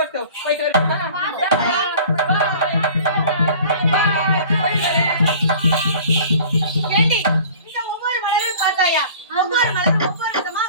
போயிட்டு வரட்டுமா? ஏண்டி இந்த ஒவ்வொரு மலரும் பார்த்தாயா? ஒவ்வொரு மலரும் ஒவ்வொரு விதமா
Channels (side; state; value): both; inverted; correlation -0.45